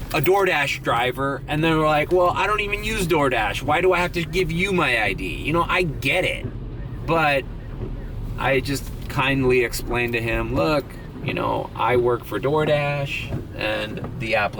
a DoorDash driver, and they're like, well, I don't even use DoorDash. Why do I have to give you my ID? You know, I get it. But I just kindly explained to him, look, you know, I work for DoorDash, and the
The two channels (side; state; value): both; identical; correlation 1.00